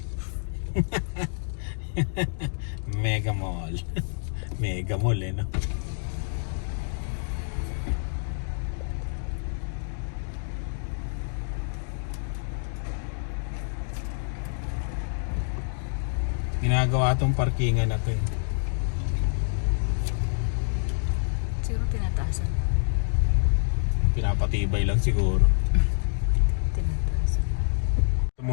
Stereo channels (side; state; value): right; silent; digital silence